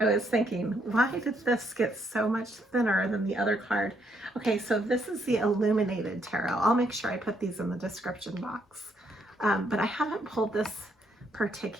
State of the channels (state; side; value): normal; both; correlation 0.73